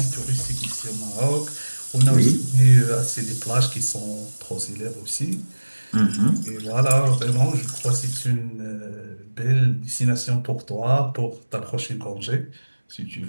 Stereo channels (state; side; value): inverted; both; correlation -1.00